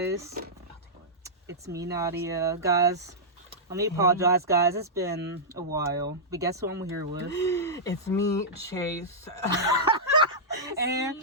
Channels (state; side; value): normal; both; correlation -0.11